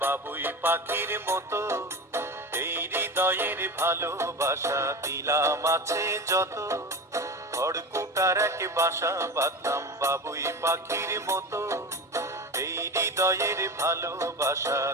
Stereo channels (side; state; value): both; normal; correlation 0.27